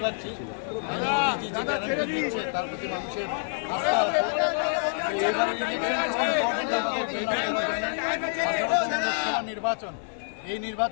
পারছি মোদিজি যে গ্যারান্টি দিচ্ছে তার প্রতি মানুষের আস্থা আছে। এবারে লোকসভা নির্বাচন, এই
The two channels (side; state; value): right; silent; 60 dB below the other